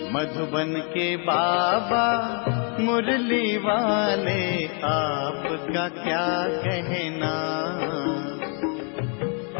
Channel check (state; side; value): quieter; right; 37.9 dB